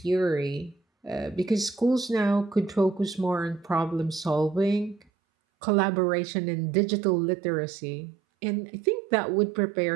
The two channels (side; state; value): left; drops out; at 5.1 s